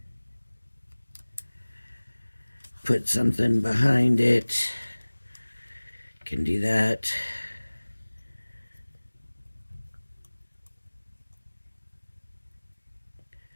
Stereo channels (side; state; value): both; inverted; correlation -1.00